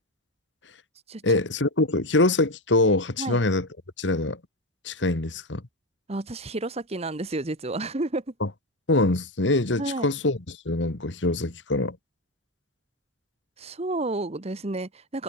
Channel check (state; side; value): normal; both; correlation 0.14